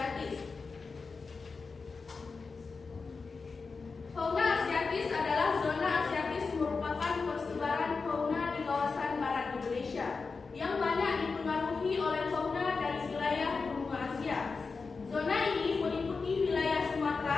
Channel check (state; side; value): quieter; right; 4.6 dB